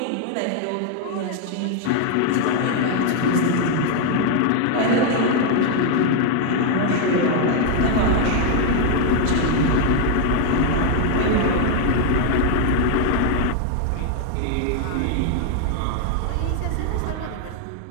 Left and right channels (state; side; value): different; both; correlation 0.01